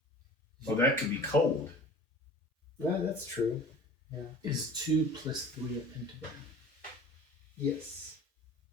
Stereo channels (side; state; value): both; normal; correlation 0.42